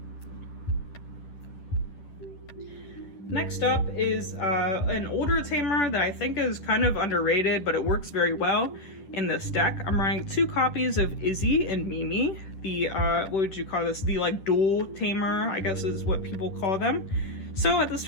Next up is an older tamer that I think is kind of underrated, but it works very well in this deck. I'm running 2 copies of Izzy and Mimi, the, what would you call this? The like dual tamer, I guess is what people call them. So at the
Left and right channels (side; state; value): right; late; 10 ms